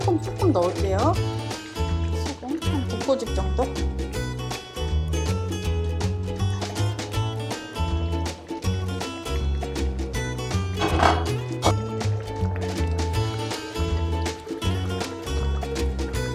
조금 넣을게요. 소금 한 2꼬집 정도.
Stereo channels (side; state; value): both; identical; correlation 1.00